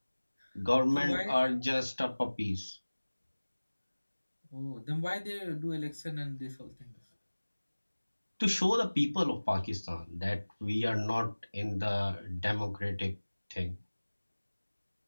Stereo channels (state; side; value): inverted; both; correlation -1.00